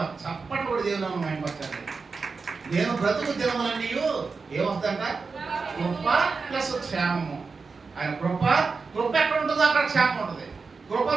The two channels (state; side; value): quieter; left; 4.6 dB